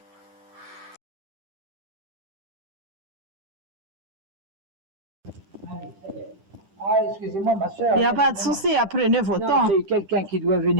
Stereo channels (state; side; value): late; left; 10 ms